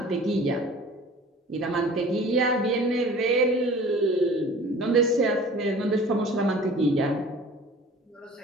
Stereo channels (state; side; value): normal; both; correlation 0.45